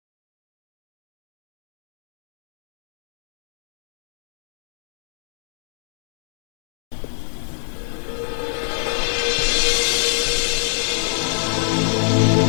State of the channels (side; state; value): right; silent; digital silence